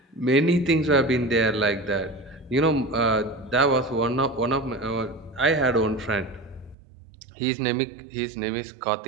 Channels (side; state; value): left; drops out; at 6.8 s